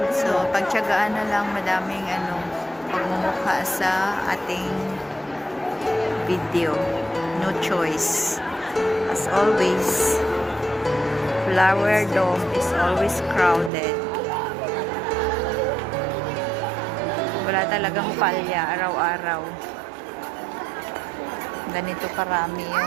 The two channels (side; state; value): left; drops out; at 13.7 s